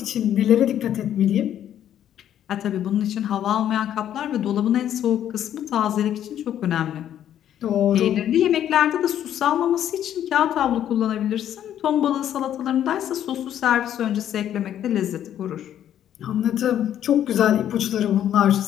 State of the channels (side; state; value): right; quieter; 10.7 dB